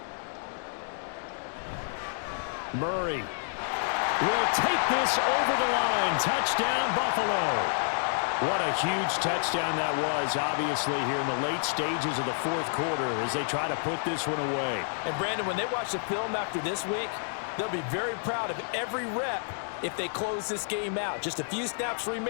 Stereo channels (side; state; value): right; silent; 58 dB below the other